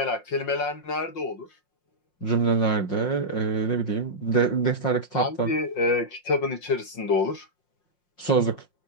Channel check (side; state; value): right; late; 5.6 ms